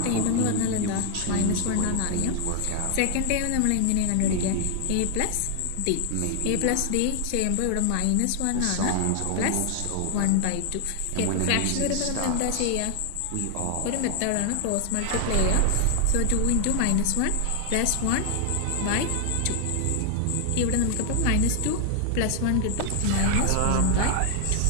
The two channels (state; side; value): different; both; correlation 0.00